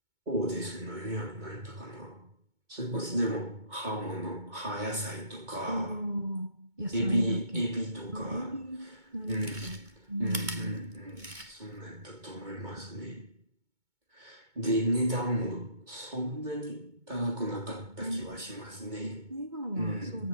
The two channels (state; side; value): late; left; 2.2 ms